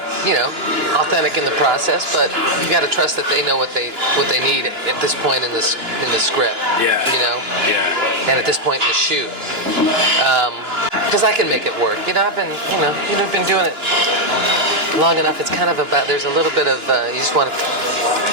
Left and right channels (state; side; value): late; left; 2.9 ms